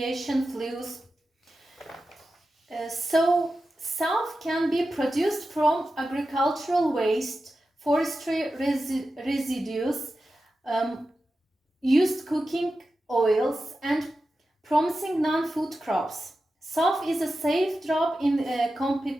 fuels. So, SAF can be produced from agricultural waste, forestry residues, used cooking oils, and promising non-food crops. SAF is a safe drop in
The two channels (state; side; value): normal; both; correlation 0.92